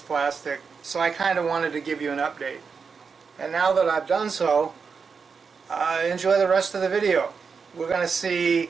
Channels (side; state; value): left; quieter; 5.5 dB